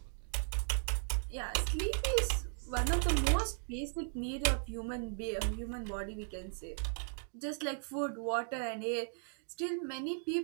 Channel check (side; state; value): left; silent; digital silence